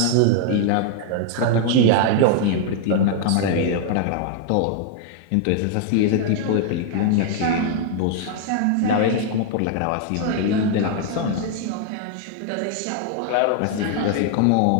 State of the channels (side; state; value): both; different; correlation 0.00